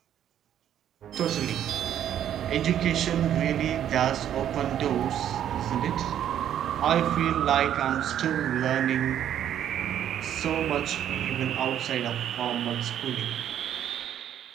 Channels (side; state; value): left; quieter; 10.4 dB